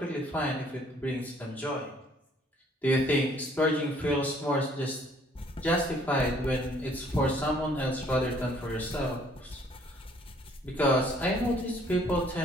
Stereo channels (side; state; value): both; normal; correlation 0.61